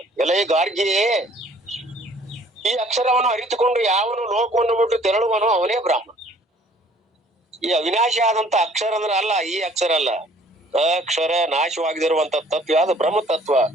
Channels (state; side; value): normal; both; correlation 0.57